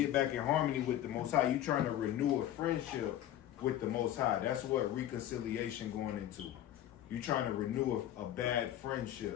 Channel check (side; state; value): right; quieter; 12.2 dB